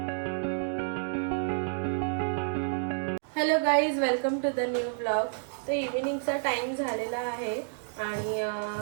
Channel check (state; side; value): silent; left; digital silence